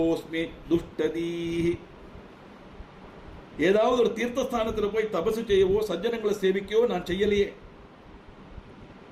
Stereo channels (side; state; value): both; identical; correlation 1.00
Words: துஷ்டதீஹி. ஏதாவது ஒரு தீர்த்தஸ்தானத்தில் போய் தபசு செய்யவோ சஜ்ஜனங்களை சேவிக்கவோ நான் செய்யலையே.